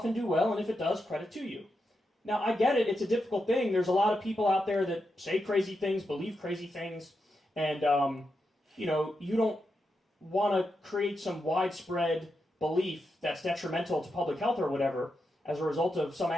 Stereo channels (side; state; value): both; normal; correlation 0.86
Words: and do well, and if it does, credit to you. Now, I get it. It's a difficult thing. There's a lot of people out there that say crazy things, believe crazy things, and, you know, you don't want to create some widespread belief that's detrimental to public health or whatever as a result of some